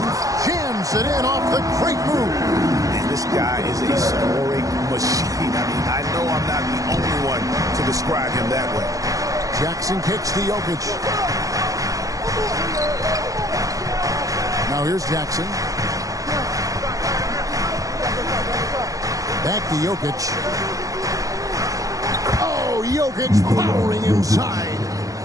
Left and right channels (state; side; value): late; left; 0.16 ms